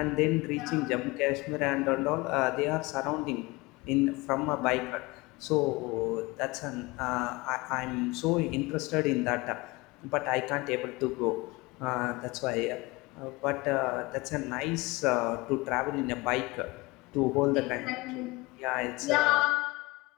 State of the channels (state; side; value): quieter; right; 23.5 dB